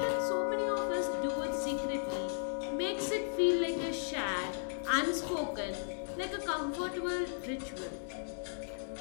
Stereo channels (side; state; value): right; silent; digital silence